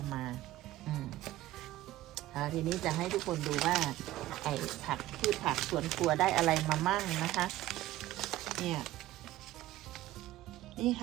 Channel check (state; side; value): quieter; left; 15.6 dB